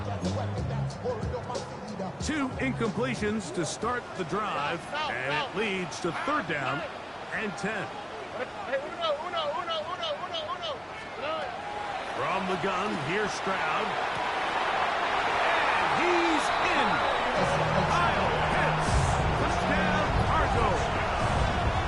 Two incompletions to start the drive, and it leads to third down and 10. From the gun, here's Stroud. And he's in. Kyle Pitts. Touchdown, Cardinals.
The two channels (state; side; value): identical; both; correlation 1.00